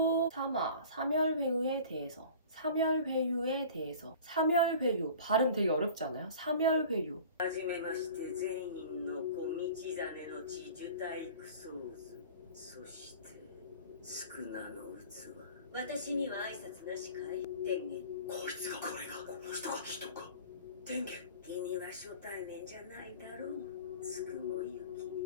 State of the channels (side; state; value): both; inverted; correlation -0.42